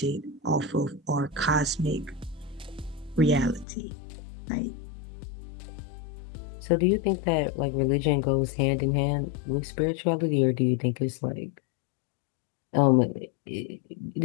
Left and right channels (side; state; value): right; drops out; at 3.7 s